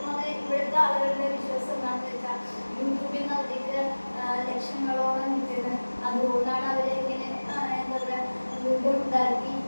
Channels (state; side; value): inverted; both; correlation -1.00